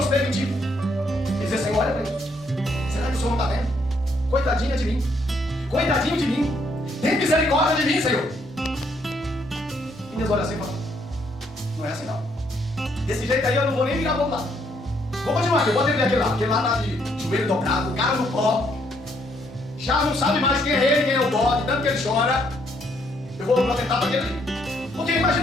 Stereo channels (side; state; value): left; noise; rumble, 30 dB below the sound